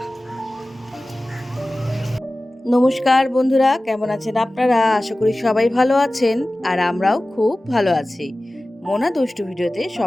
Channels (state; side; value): normal; both; correlation 0.97